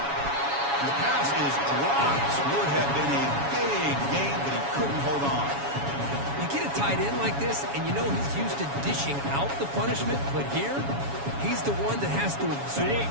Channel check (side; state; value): left; late; 7.2 ms